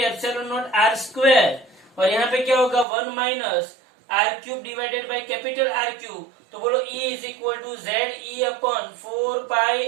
epsilon naught R square, और यहाँ पे क्या होगा 1 minus R cube divided by capital R cube, तो बोलो E is equal to Z E upon 4 pi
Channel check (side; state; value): left; drops out; at 2.9 s